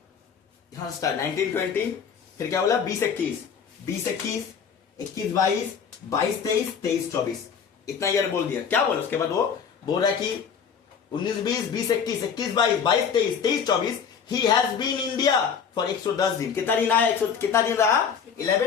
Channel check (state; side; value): quieter; right; 6.9 dB